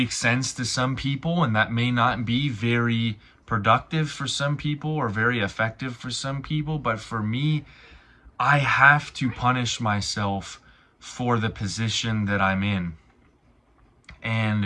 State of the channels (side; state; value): both; identical; correlation 1.00